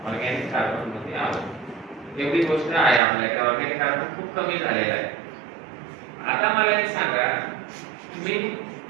ऑर्गॅनिक कार्बन मध्ये आहोत. एवढी गोष्ट आहे आपल्याकडे. ऑर्गॅनिक कार्बन खूप कमी झालेला आहे. आता मला एक सांगा, मी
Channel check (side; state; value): left; drops out; at 3.0 s